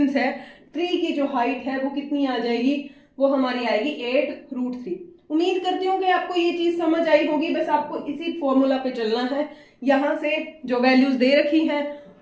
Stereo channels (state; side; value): identical; both; correlation 1.00